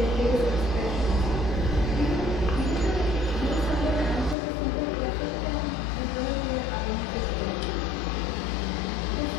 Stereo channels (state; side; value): drops out; right; at 4.4 s